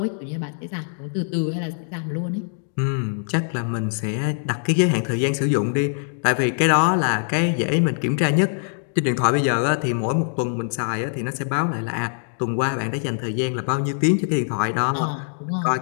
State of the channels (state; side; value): silent; right; digital silence